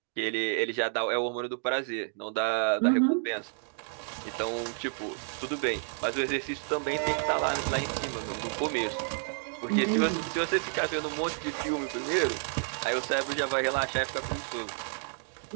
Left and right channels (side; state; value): left; silent; 58 dB below the other